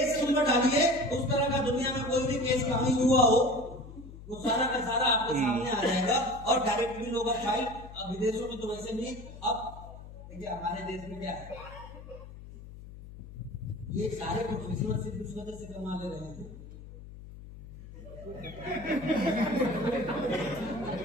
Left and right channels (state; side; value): noise; left; hum, 15 dB below the sound